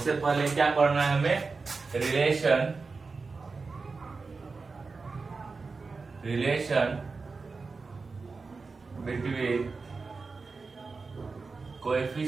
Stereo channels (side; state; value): left; quieter; 4.3 dB